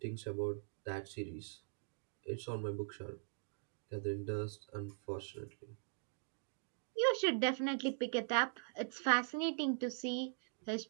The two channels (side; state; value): left; silent; digital silence